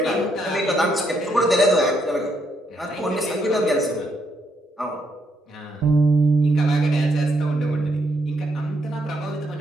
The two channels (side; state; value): both; normal; correlation 0.75